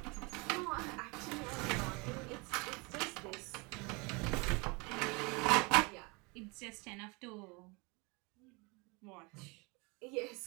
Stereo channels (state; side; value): quieter; left; 28.3 dB